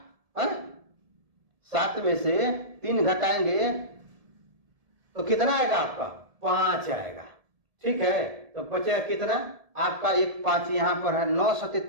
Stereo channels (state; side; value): late; left; 1.7 ms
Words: 7 में से 3 घटाएंगे तो कितना आएगा आपका 5 आएगा। ठीक है, तो बचेगा कितना आपका एक 5 यहाँ पर है 9 सते